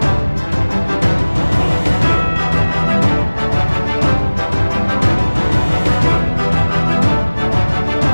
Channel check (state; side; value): inverted; both; correlation -1.00